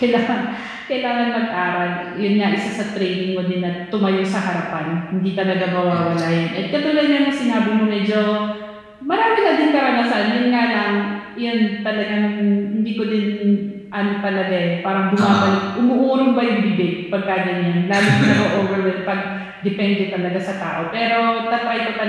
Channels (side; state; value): both; identical; correlation 1.00